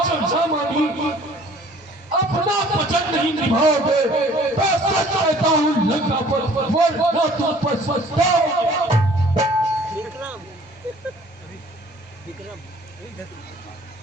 जो न मानी अपना वचन नहीं निभाओगे मैं सच कहता हूँ लंका पर वरना तुम पर पछताओगे।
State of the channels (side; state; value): both; normal; correlation 0.54